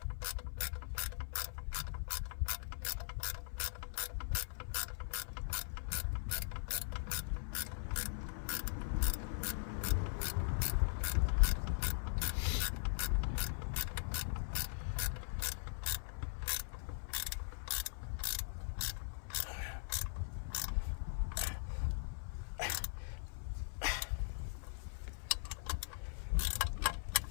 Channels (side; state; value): right; silent; 51 dB below the other